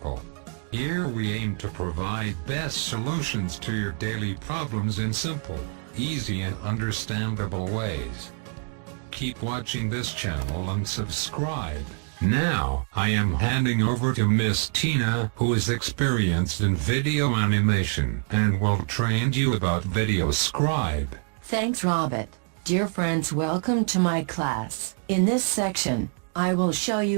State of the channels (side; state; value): left; quieter; 36.9 dB